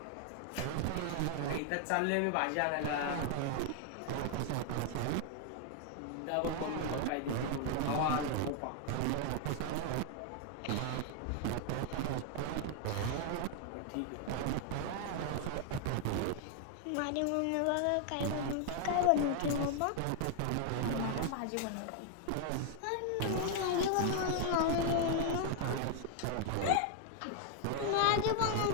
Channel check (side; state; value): both; different; correlation 0.00